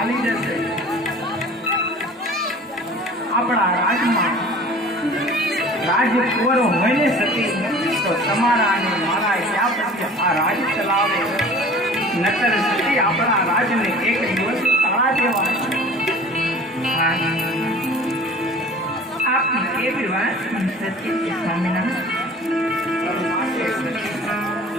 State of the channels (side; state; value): both; normal; correlation 0.44